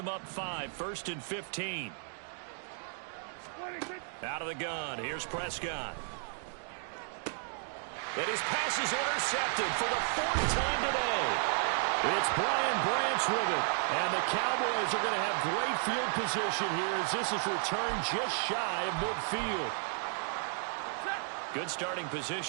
up 5, 1st and 15. Out of the gun, here's Prescott. And his pass is intercepted for the 4th time today. It's Brian Branch with it. And the Cowboys are going to have great field position here as this is returned just shy of midfield. Good starting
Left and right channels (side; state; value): left; silent; 55 dB below the other